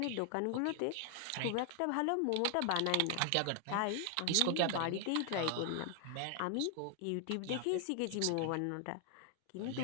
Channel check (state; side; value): different; both; correlation 0.00